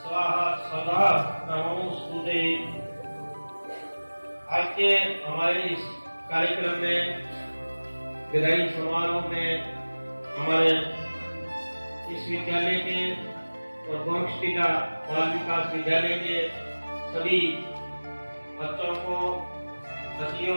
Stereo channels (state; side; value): inverted; both; correlation -1.00